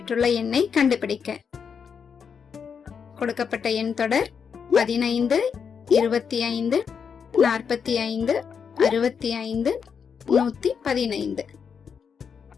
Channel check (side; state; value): right; quieter; 6.6 dB